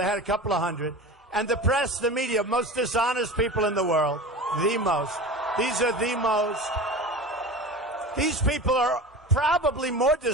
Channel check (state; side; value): normal; both; correlation 0.32